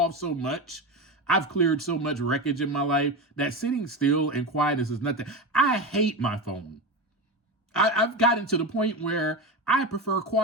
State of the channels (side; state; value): both; normal; correlation 0.21